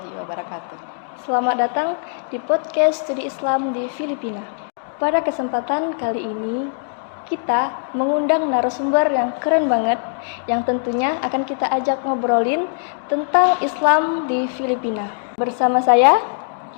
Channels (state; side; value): silent; right; digital silence